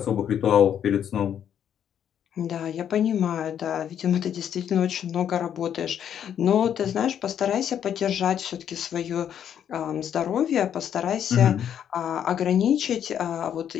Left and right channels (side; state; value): right; quieter; 9.3 dB